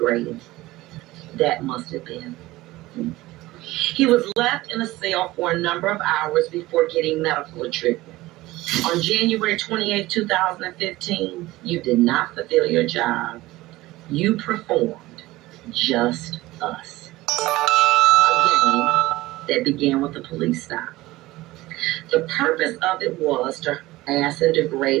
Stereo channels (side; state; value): left; quieter; 18.4 dB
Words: that must have been. He was left in a cell for a number of hours before getting medical treatment. On January 28, 2015, you did not fulfill your job. You performed just us. Again, that began with a police stop. The purpose of it was to harass and